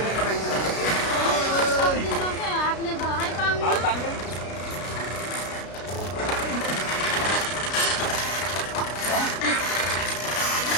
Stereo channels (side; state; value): right; late; 33 ms